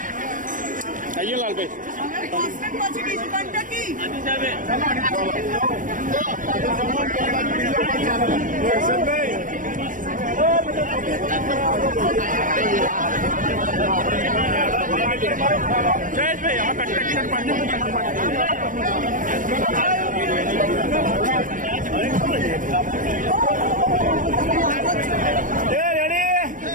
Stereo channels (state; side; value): late; left; 0.38 ms